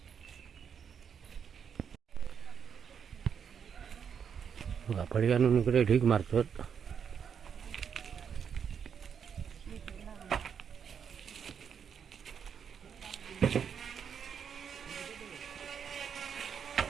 बघा फळी आणून इकडे ढीक मारतात.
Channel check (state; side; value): quieter; left; 7.3 dB